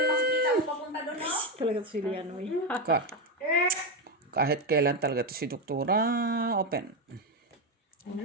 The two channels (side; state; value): both; normal; correlation 0.10